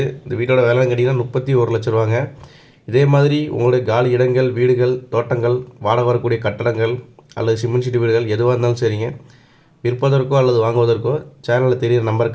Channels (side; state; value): both; identical; correlation 1.00